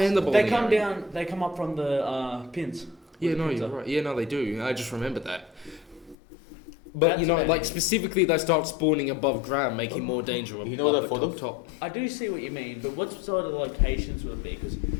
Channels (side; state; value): right; drops out; at 6.2 s